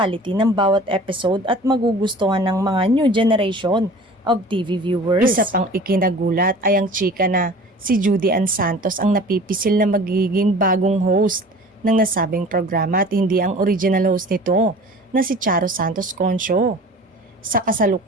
ng bawat episode at magugustuhan ng mga new generation of TV viewers. Isa pang ikinagulat ay ang chika na si Judy Ann Santos ang napipisil na magiging bagong host ng nasabing programa at hindi ang original host nito na si Charo Santos Concho. Sa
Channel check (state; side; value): normal; both; correlation 0.43